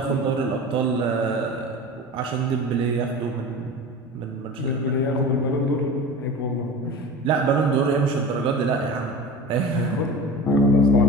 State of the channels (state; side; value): normal; both; correlation 0.33